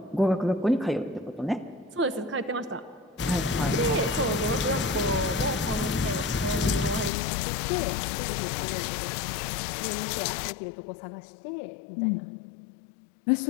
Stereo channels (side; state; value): right; drops out; at 7.1 s